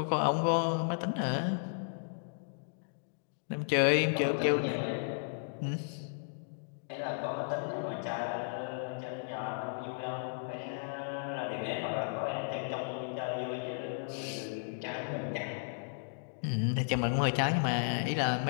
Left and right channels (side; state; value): right; silent; digital silence